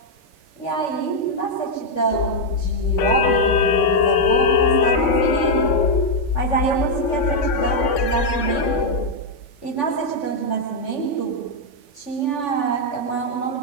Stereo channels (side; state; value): right; late; 3.5 ms